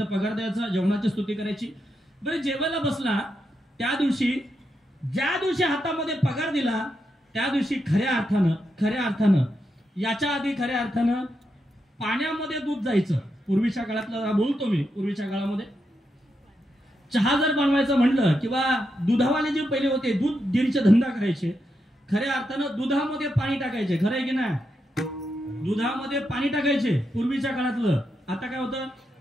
पगार द्यायचा, जेवणाची स्तुती करायची. बरं, जेवायला बसला त्या दिवशी, ज्या दिवशी हातामध्ये पगार दिला त्या दिवशी खऱ्या अर्थानं याच्या आधी खऱ्या अर्थानं पाण्यामध्ये दूध जायचं. पूर्वीच्या काळातला बोलतो मी, पूर्वीच्या काळामध्ये चहा जर बनवायचं म्हणलं किंवा दुधावाले जे पहिले होते, दूध डेअरीचा धंदा करायचे, खऱ्या अर्थानं दुधामध्ये पाणी टाकायचे. खरं आहे की नाही? दुधामध्ये पाणी टाकायचे पूर्वीच्या काळातलं. आता काय होतं?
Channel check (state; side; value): normal; both; correlation 0.84